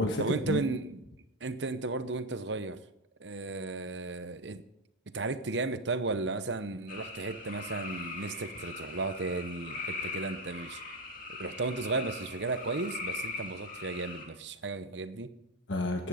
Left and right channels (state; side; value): normal; both; correlation 0.10